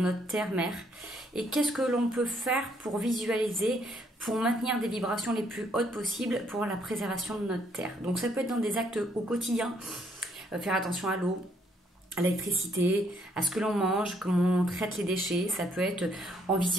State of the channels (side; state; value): both; normal; correlation 0.69